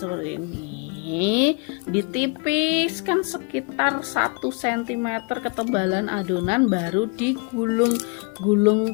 ini, ditipiskan sekitar 1 cm ketebalan adonan, baru digulung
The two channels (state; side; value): quieter; right; 32.4 dB